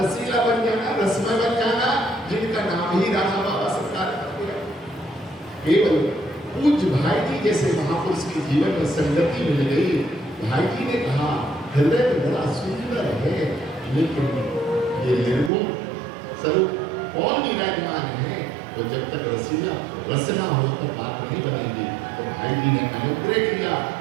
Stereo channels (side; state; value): left; drops out; at 15.5 s